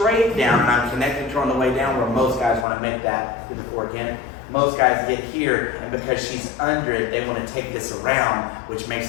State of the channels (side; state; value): right; drops out; at 2.7 s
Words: down, and I'm connected to her on the way down, where most guys want to make that to the 4 again. Most guys get here, and because she's under it, they want to take this around, which makes